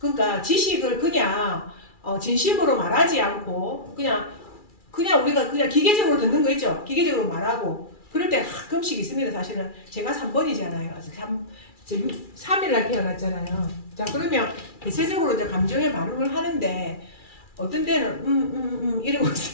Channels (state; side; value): late; right; 2.3 ms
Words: 지식을 그냥 진심으로 말하지 않고 그냥 우리가 그냥 기계적으로 듣는 거 있죠. 기계적으로 말하고 그럴 때 가끔씩 있습니다. 사실은 제가 3번이잖아요. 3일날 태어났잖아요. 자, 그러면 대체적으로 이제 감정의 반응을 하는데 어떤 때는 이러고